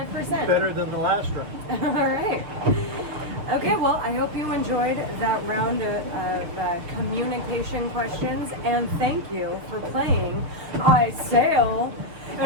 Better than the last round. All right. Okay, well, I hope you enjoyed that round of communication questions, and thank you for playing I Sail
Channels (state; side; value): late; left; 6.6 ms